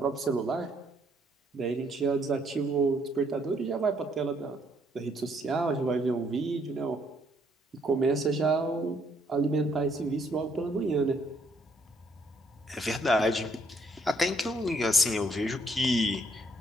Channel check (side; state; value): both; normal; correlation 0.69